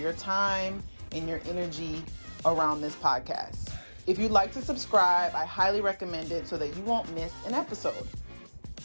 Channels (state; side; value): inverted; both; correlation -1.00